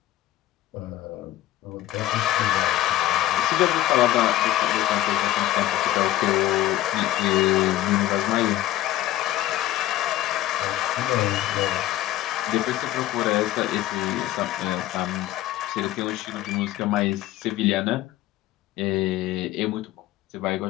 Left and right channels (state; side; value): quieter; right; 14.5 dB